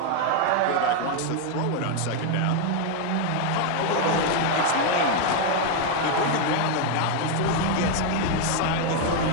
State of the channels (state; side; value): different; both; correlation 0.01